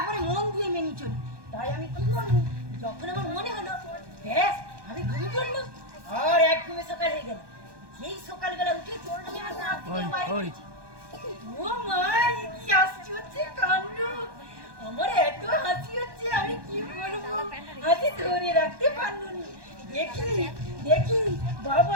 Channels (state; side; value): late; left; 1.2 ms